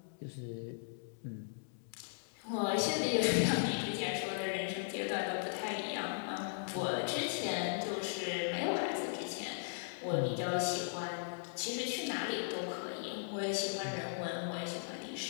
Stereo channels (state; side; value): silent; right; digital silence